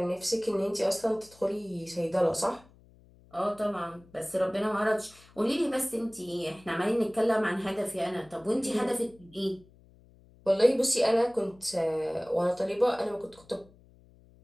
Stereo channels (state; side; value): noise; left; hum, 27 dB below the sound